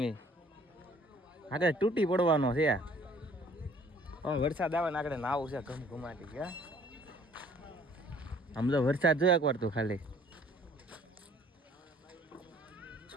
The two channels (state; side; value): normal; both; correlation 0.56